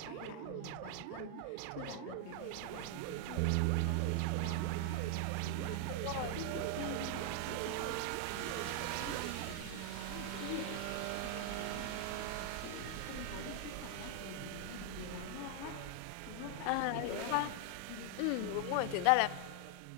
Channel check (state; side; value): different; both; correlation 0.00